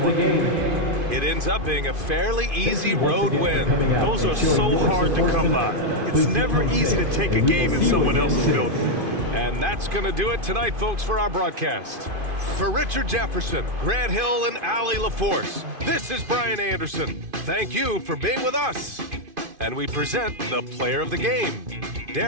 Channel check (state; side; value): late; left; 2.5 ms